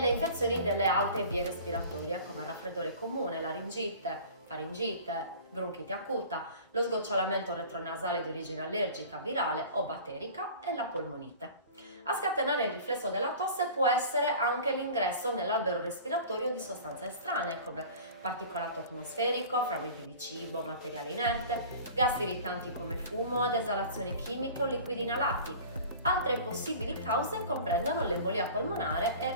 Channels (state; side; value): inverted; both; correlation -0.41